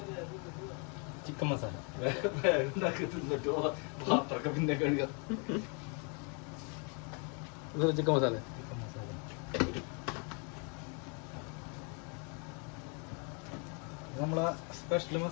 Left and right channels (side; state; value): right; quieter; 35.9 dB